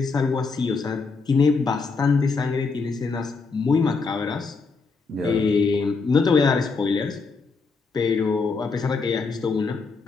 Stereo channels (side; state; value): right; quieter; 4.5 dB